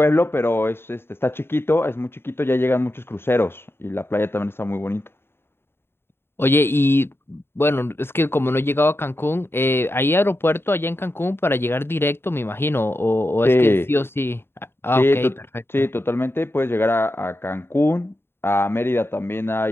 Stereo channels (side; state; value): right; late; 0.11 ms